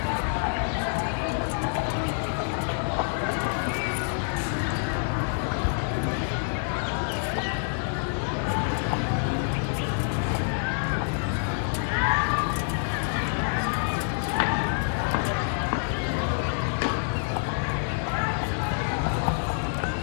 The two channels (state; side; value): silent; right; 60 dB below the other